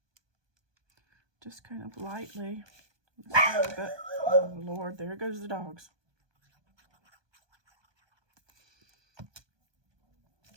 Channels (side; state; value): left; late; 1.2 ms